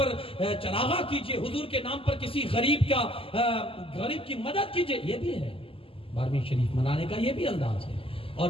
चरागा कीजिए, हुजूर के नाम पर किसी गरीब की मदद कीजिए। ये भी है 12वीं शरीफ मनाने का, ये भी अंदाज है।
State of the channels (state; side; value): late; right; 0.26 ms